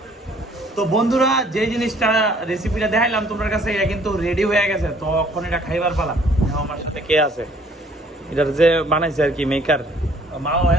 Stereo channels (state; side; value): normal; both; correlation 0.59